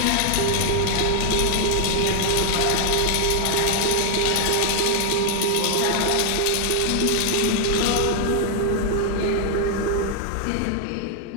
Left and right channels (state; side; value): different; both; correlation 0.00